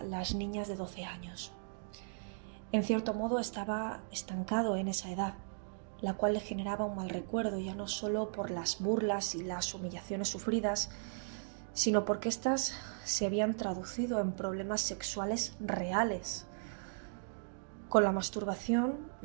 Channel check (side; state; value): left; silent; digital silence